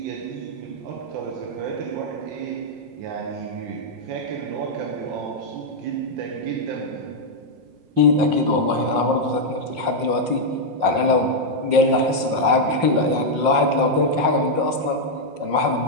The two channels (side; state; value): left; late; 5.6 ms